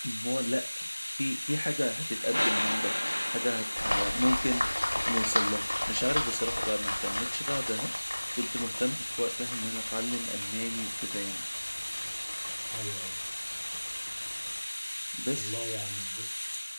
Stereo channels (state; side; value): inverted; both; correlation -1.00